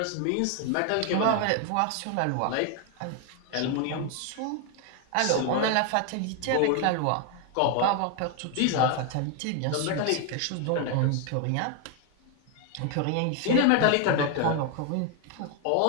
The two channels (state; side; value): different; both; correlation 0.01